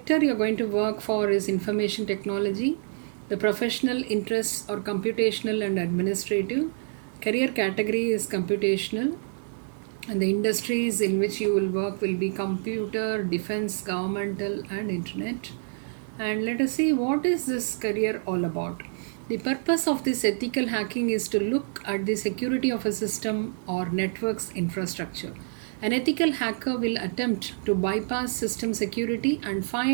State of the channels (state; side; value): silent; left; digital silence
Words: you're going to work for is information technology. The professional interests are computational and administrative. Career category is computational. And the industries in which you will work will be computer, defense, governmental, and internet. And let us see what is this career all about. The purpose of this ethical hacking is to look at the security of a system or network's infrastructure. An ethical hacker will attempt to bypass system security and